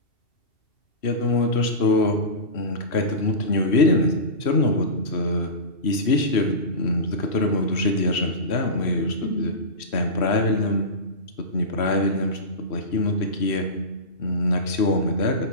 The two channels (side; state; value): right; late; 3.1 ms